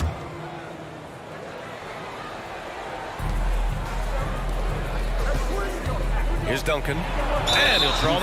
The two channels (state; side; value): identical; both; correlation 1.00